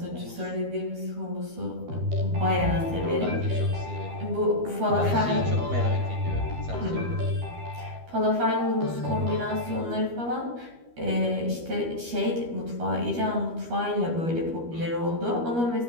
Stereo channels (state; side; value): late; left; 12 ms